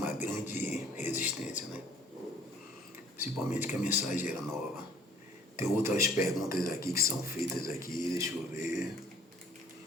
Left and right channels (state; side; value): normal; both; correlation 0.56